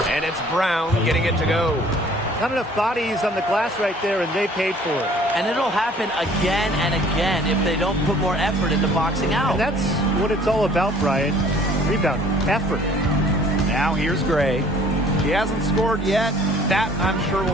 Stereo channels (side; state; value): both; normal; correlation 0.54